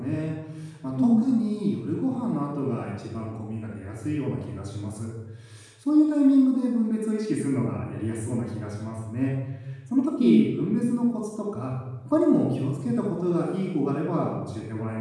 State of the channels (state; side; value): identical; both; correlation 1.00